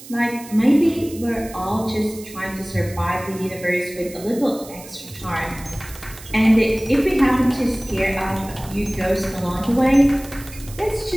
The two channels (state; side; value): noise; right; hiss, 17 dB below the sound